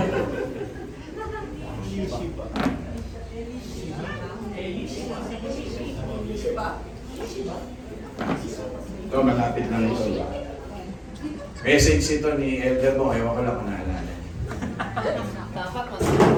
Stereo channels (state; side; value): identical; both; correlation 1.00